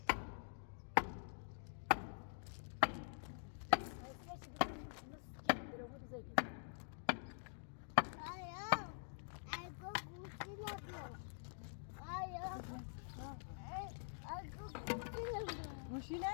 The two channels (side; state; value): right; silent; digital silence